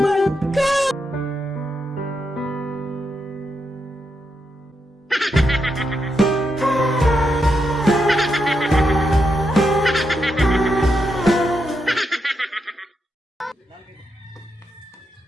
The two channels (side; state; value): both; normal; correlation 0.83